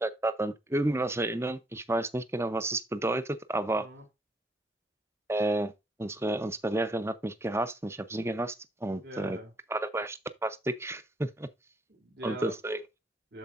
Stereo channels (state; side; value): normal; both; correlation 0.69